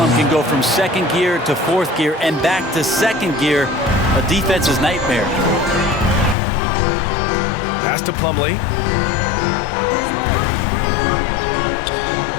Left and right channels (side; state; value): right; drops out; at 6.4 s